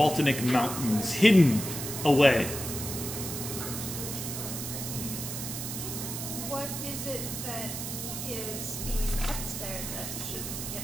Mountains, hidden away. What is it that is being kept there that shouldn't get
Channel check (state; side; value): noise; right; hiss, 6 dB below the sound